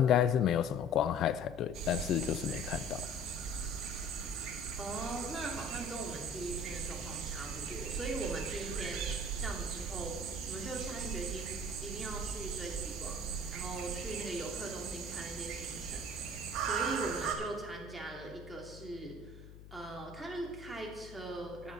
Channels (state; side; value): noise; left; hum, 15 dB below the sound